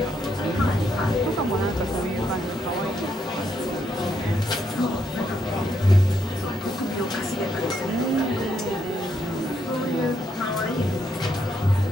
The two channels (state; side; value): normal; both; correlation 0.77